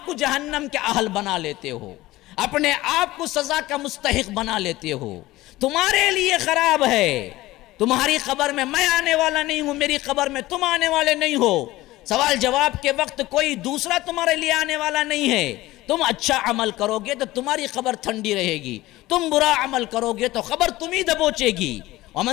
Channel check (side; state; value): right; quieter; 17.8 dB